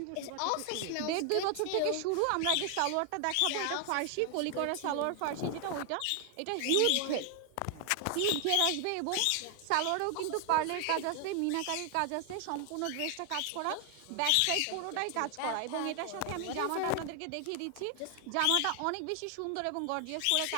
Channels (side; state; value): both; different; correlation 0.00